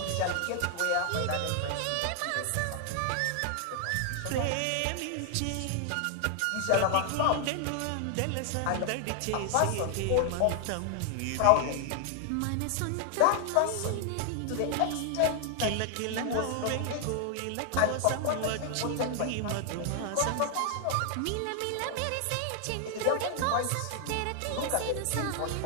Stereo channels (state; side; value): different; both; correlation 0.00